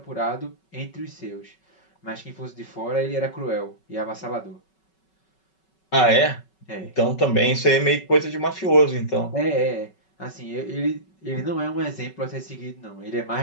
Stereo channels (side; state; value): right; late; 5.3 ms